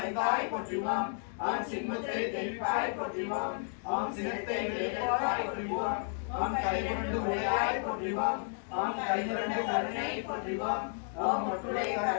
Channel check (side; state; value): right; silent; 56 dB below the other